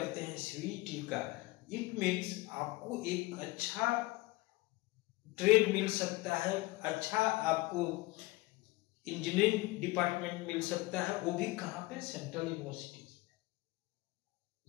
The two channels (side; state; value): right; quieter; 20.8 dB